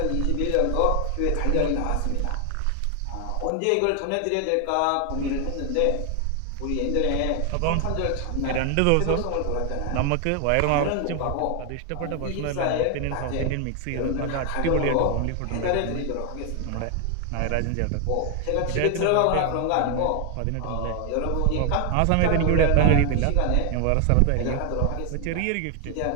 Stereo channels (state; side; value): different; both; correlation 0.00